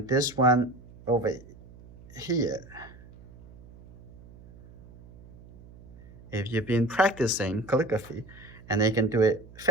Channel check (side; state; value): right; noise; hum, 21 dB below the sound